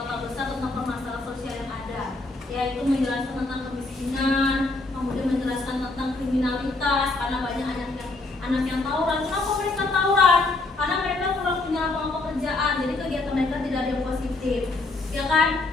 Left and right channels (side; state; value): right; quieter; 3.2 dB